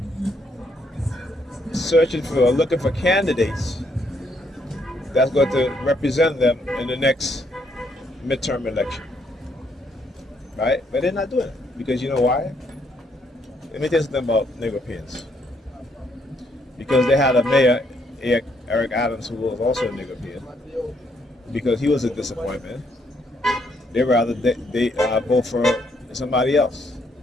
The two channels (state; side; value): normal; both; correlation 0.72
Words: searching for or looking for candidates that's going to represent them in the next midterm election. Right? But they're not doing it. Because you know why? Let me tell you something about Nicaraguans. Because they had a mayor, Eric Adams, who was also a Nicaraguan. Because he was a disappointment. They rather they vote for somebody else.